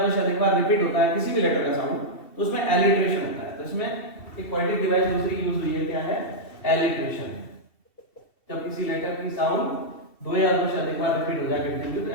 दो से अधिक बार रिपीट होता है, किसी भी लेटर का साउंड, तो उसमें एलिट्रेशन होता है। तो इसमें एक पोएटिक डिवाइस दूसरी यूज हुई है, क्या है? एलिट्रेशन। जब किसी लेटर की साउंड दो या दो से अधिक बार रिपीट हो जाए कंटिन्यू, तो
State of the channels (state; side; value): late; right; 2.7 ms